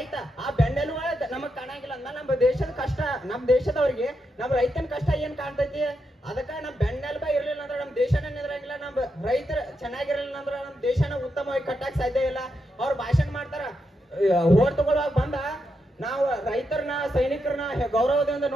ಆ ಬೆನ್ನೆಲುಬು ನಮಗ್ ಕಾಣಂಗಿಲ್ಲ ಅಂದ್ಮೇಲೆ ನಮ್ಮ ದೇಶದ ಕಷ್ಟ, ನಮ್ ದೇಶದವ್ರಿಗೆ ನಮ್ ರೈತನ ಕಷ್ಟ ಏನ್ ಕಾಣ್ತೈತಿ? ಅದಕ್ಕ ನಮ್ ಬೆನ್ನೆಲುಬ ಇರ್ಲಿಲ್ಲ ಅಂದ್ರೆ ನಮ್ ದೇಶನ ನಿಂದ್ರಂಗಿಲ್ಲ. ನಮ್ ರೈತರ ಚೆನ್ನಾಗಿರ್ಲಿಲ್ಲ ಅಂದ್ರೆ ನಮ್ ದೇಶನ ಉತ್ತಮವಾಗಿ ಕಟ್ಟಕ್ ಸಾಧ್ಯ ಇಲ್ಲ. ಅವ್ರು ಭಾಷಣ ಮಾಡ್ತಾರ, ಓಟ್ ತಗೊಳ್ಳುವಾಗ ಬಂದ ನಾವು ರೈತರನ್ನ ಸೈನಿಕರನ್ನ ಗೌರವದಿಂದ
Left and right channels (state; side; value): normal; both; correlation 0.84